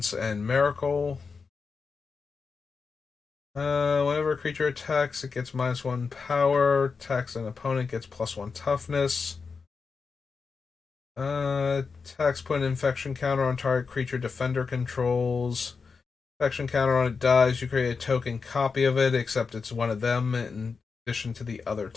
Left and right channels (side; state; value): right; quieter; 5.0 dB